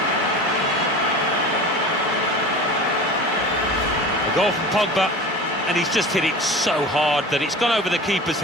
A goal from Pogba, and he's just hit it so hard that it's gone over the keeper's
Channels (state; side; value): normal; both; correlation 0.36